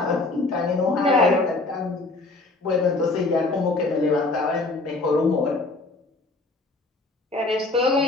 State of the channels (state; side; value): quieter; right; 3.3 dB